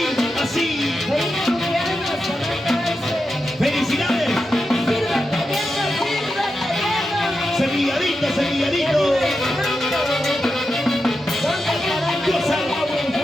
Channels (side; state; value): both; normal; correlation 0.89